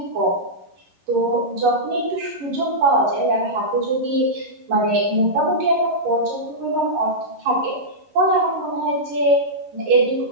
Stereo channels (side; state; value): left; late; 11 ms